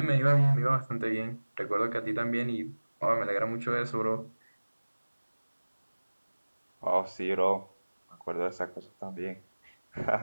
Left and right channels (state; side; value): inverted; both; correlation -1.00